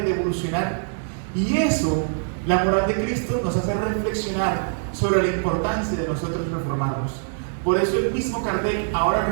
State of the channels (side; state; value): left; silent; digital silence